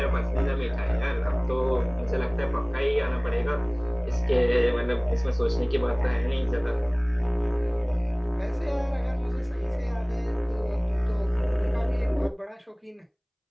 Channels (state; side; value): identical; both; correlation 1.00